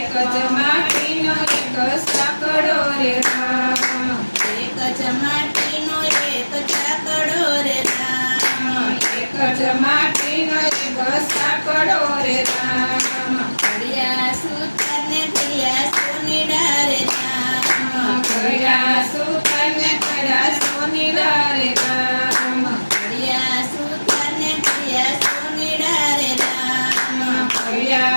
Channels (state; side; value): inverted; both; correlation -1.00